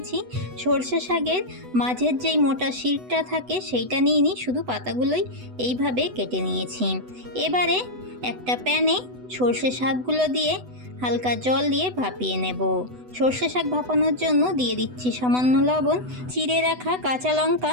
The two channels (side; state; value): left; late; 8.0 ms